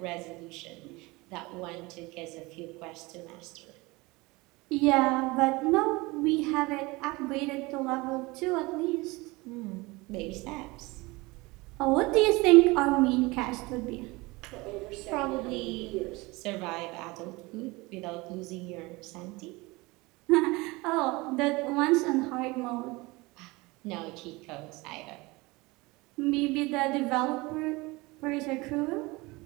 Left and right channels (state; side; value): quieter; left; 23.3 dB